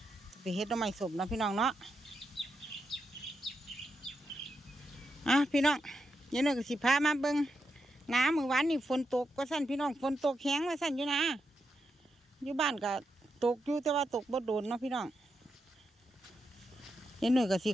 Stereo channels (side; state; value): both; normal; correlation 0.85